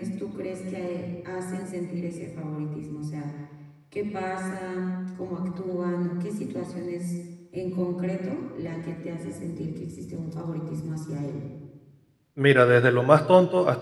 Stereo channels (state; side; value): identical; both; correlation 1.00